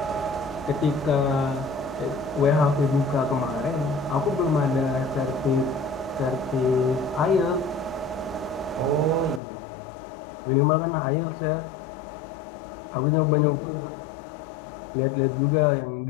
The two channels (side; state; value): right; drops out; at 9.4 s